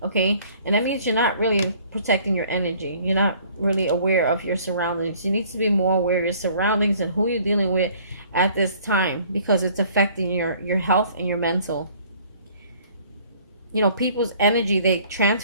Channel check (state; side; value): inverted; both; correlation -0.56